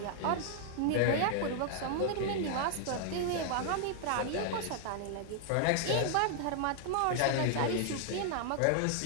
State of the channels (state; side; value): different; both; correlation 0.00